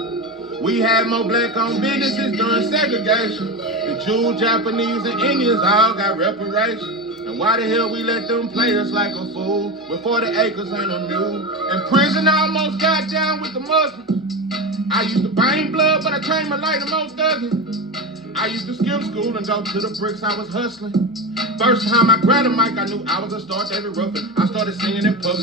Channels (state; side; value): normal; both; correlation 0.21